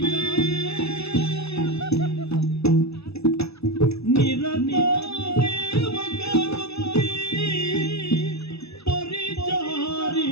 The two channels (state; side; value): late; right; 0.79 ms